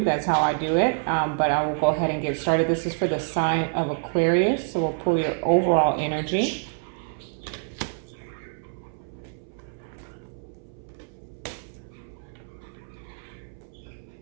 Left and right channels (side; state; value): left; silent; 61 dB below the other